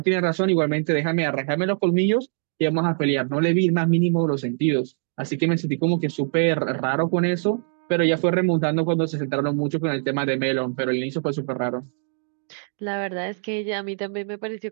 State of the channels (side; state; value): left; silent; 63 dB below the other